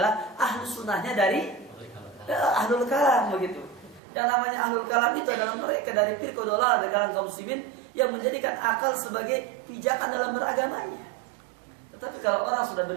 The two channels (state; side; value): drops out; left; at 4.0 s